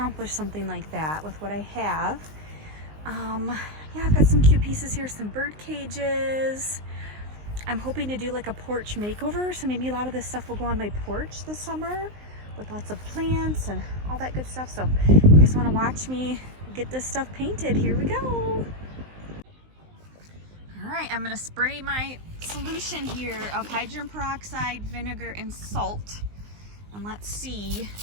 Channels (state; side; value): late; left; 19 ms